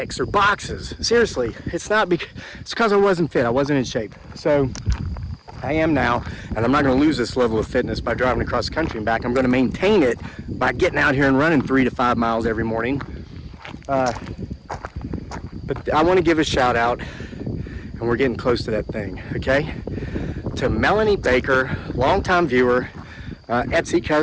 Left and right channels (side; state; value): both; identical; correlation 1.00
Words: or boxes. Seriously, it's because I wasn't fit. I wasn't in shape. So I am now, and I'm not going to lose this level of fitness by driving across the country and back. I'm going to maintain it by getting out here and running 3 to 5 miles every morning. But I want to give a shout out, and we're getting close to that thing, okay? To Melanie Baker, longtime viewer, Etsy